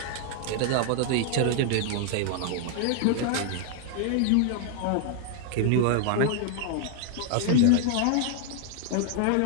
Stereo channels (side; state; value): both; different; correlation 0.00